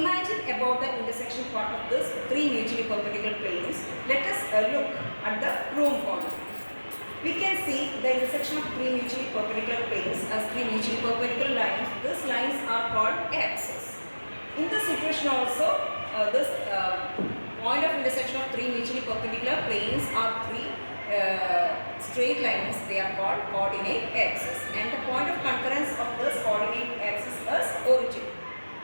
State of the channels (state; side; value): inverted; both; correlation -1.00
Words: about the intersection part of this three mutually perpendicular planes, let us look at the room corner. We can see the intersection of three mutually perpendicular planes as three mutually perpendicular lines. These lines are called axes. In this situation also, this point of intersection of three mutually perpendicular planes are three straight lines. They are called coordinate axes, and the point of concurrence of this coordinate axis is origin.